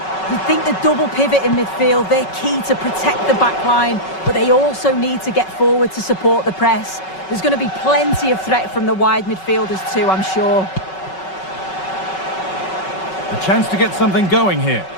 You think the double pivot in midfield, they're key to protect the back line, but they also need to get forward to support the press. There's going to be plenty of threat from the wide midfielders too, I'm sure. A chance to get something going here.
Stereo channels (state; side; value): late; right; 5.3 ms